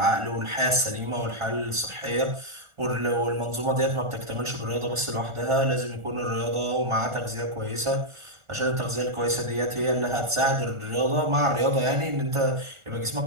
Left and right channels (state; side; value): late; left; 1.4 ms